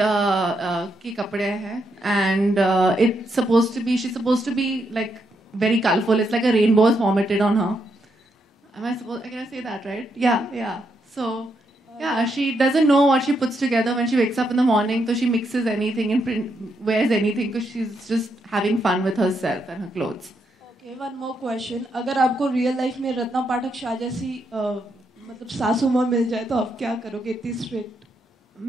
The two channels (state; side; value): normal; both; correlation 0.79